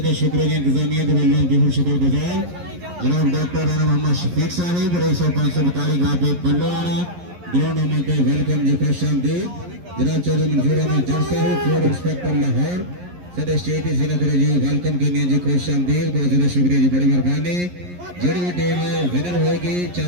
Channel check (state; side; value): late; left; 11 ms